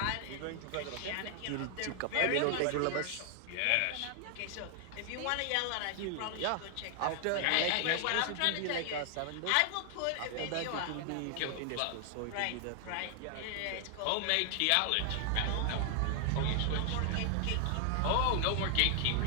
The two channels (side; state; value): both; different; correlation 0.00